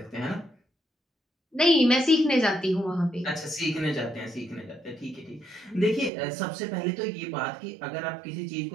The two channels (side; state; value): left; drops out; at 6.1 s